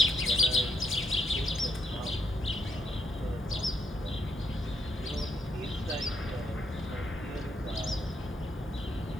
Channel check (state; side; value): normal; both; correlation 0.77